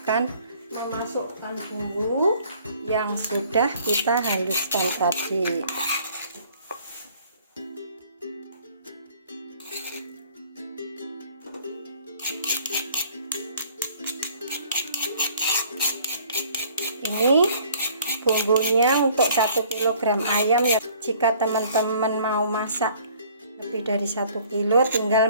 memasukkan bumbu yang sudah kita haluskan tadi. Ini bumbunya untuk 1 kg ayam ya. Jika teman-teman mau masak lebih dari 1 kilo, tinggal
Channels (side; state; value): both; inverted; correlation -0.56